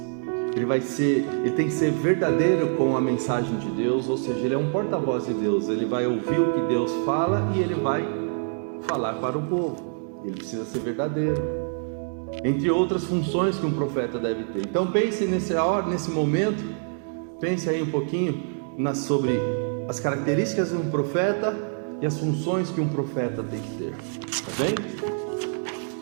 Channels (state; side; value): silent; left; 57 dB below the other